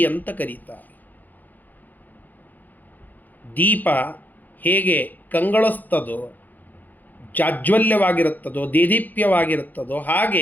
ಅಂತ ಕರೀತಾರೆ. ದೀಪ ಹೇಗೆ ಕಂಗೊಳಿಸ್ತದೋ, ಜಾಜ್ವಲ್ಯವಾಗಿರುತ್ತದೋ, ದೇದೀಪ್ಯವಾಗಿರುತ್ತದೋ,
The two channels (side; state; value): right; late; 0.084 ms